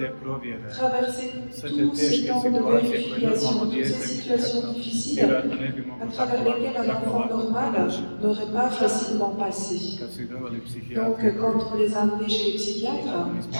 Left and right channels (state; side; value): inverted; both; correlation -1.00